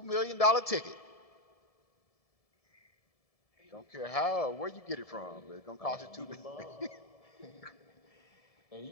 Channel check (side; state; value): right; late; 1.7 ms